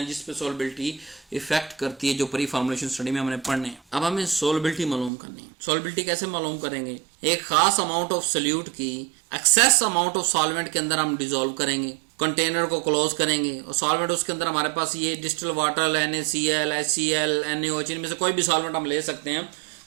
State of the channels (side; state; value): left; drops out; at 5.1 s